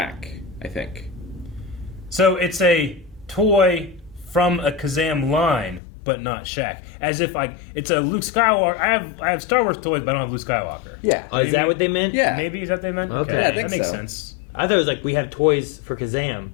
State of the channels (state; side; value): drops out; right; at 5.8 s